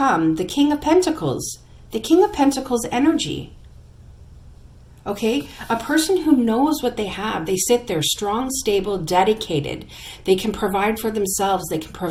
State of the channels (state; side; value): identical; both; correlation 1.00